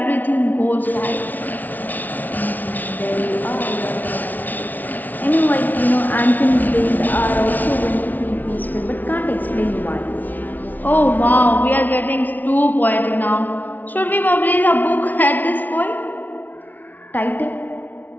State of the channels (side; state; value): right; late; 0.081 ms